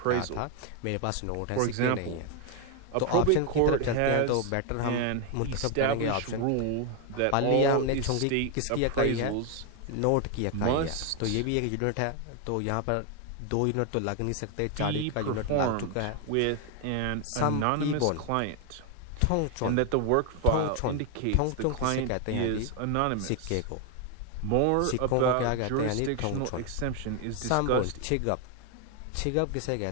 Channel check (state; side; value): different; both; correlation 0.01